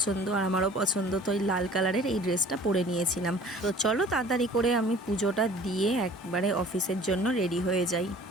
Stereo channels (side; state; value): both; normal; correlation 0.48